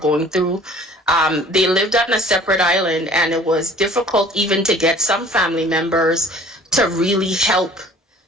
through. They lived on a separate island, and it was difficult even to get some family members to really help.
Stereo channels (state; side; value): normal; both; correlation 0.50